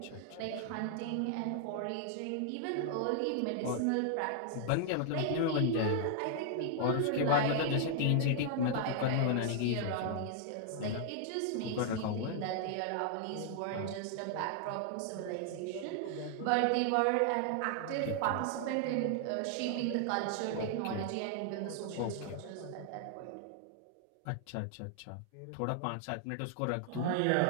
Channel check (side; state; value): both; different; correlation -0.01